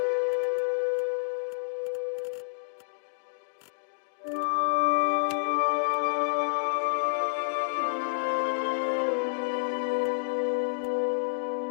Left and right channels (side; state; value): right; silent; digital silence